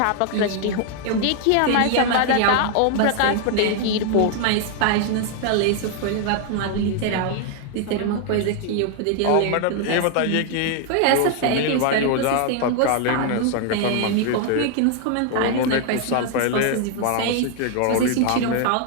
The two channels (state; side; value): different; both; correlation 0.00